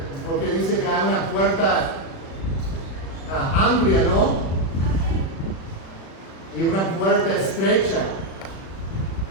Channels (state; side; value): late; right; 36 ms